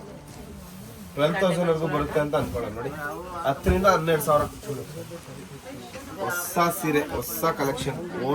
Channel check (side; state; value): both; identical; correlation 1.00